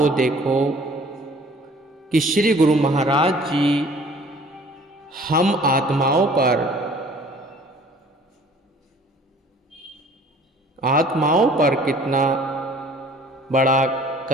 देखो कि श्री गुरु महाराज जी हम आत्माओं पर कितना बड़ा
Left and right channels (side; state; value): both; normal; correlation 0.52